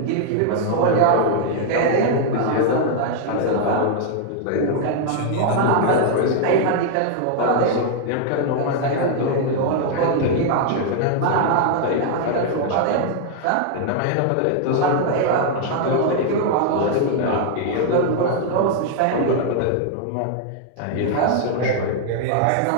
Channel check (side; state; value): both; different; correlation 0.00